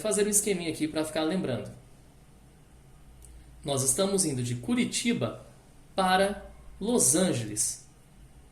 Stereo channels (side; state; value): both; identical; correlation 1.00